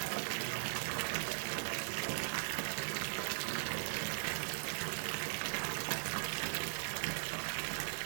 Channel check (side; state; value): left; silent; 51 dB below the other